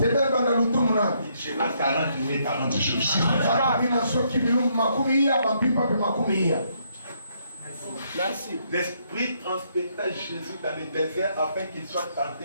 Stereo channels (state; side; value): inverted; both; correlation -0.73